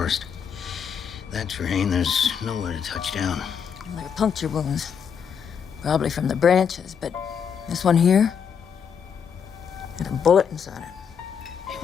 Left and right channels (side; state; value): right; quieter; 7.2 dB